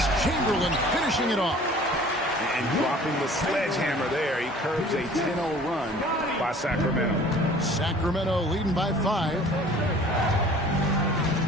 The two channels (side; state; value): both; normal; correlation 0.49